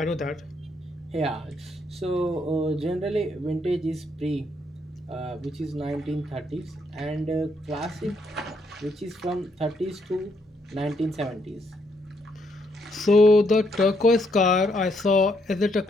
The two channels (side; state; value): both; normal; correlation 0.74